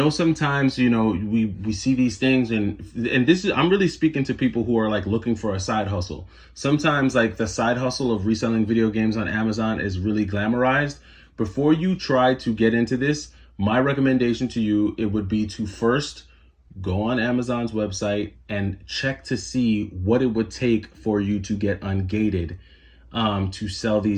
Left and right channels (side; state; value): both; identical; correlation 1.00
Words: sometimes, you know, we see these things, and this is, I'm really speaking to people who are like looking for a side hustle. Sometimes like the side hustle of reselling video games on Amazon is really glamorized. Before you try to get into this, my recommendation to you, it would be to first go on Amazon's website and check to see what it would take for you to get ungated, to sell